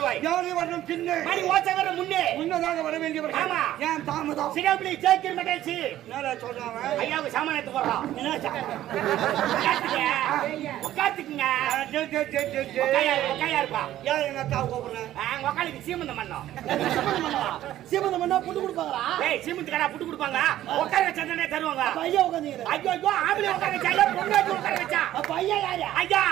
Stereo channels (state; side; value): quieter; left; 13.3 dB